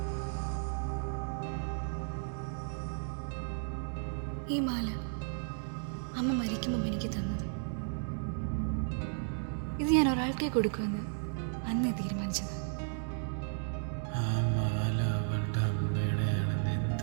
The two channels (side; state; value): left; silent; digital silence